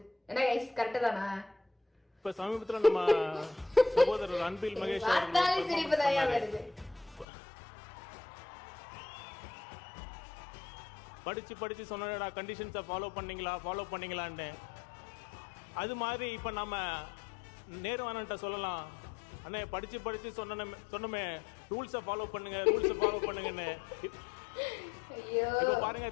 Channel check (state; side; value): drops out; right; at 7.2 s